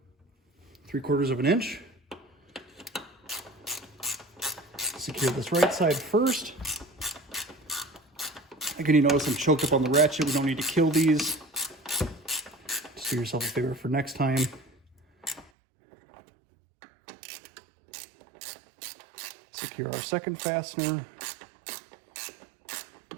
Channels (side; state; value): left; drops out; at 15.5 s